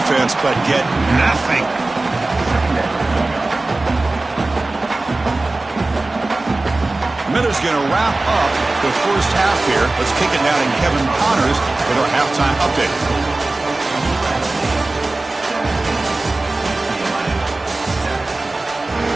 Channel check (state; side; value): quieter; left; 3.0 dB